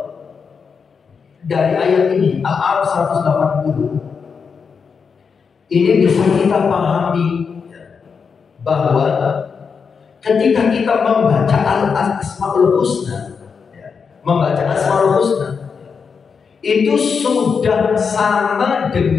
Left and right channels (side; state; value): right; quieter; 5.8 dB